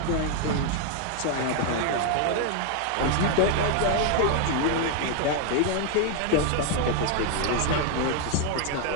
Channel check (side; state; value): both; different; correlation 0.00